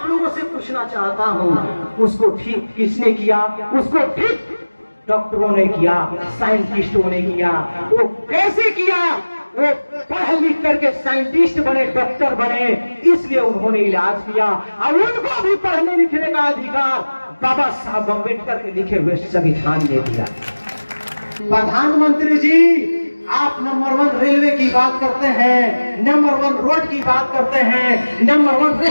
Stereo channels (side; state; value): both; inverted; correlation -1.00